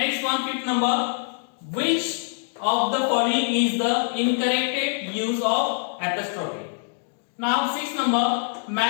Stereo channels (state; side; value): silent; right; digital silence